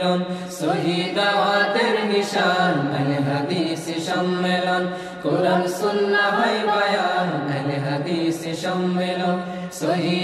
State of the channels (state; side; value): identical; both; correlation 1.00